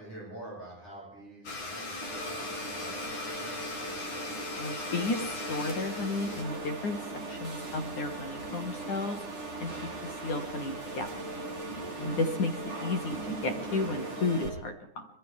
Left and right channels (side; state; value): right; late; 9.8 ms